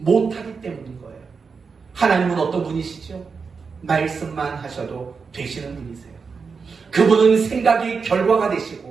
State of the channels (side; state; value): left; quieter; 5.2 dB